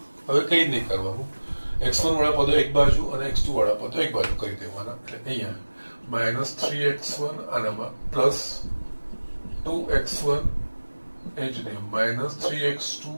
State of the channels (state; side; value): inverted; both; correlation -1.00